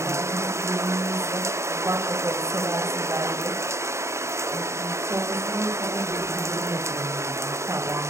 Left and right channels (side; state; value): left; late; 0.14 ms